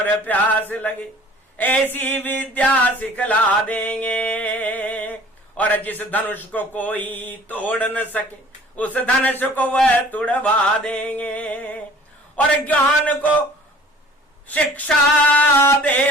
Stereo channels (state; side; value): normal; both; correlation 0.50